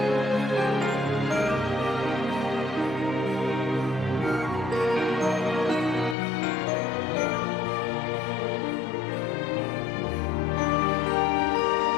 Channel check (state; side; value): drops out; right; at 6.2 s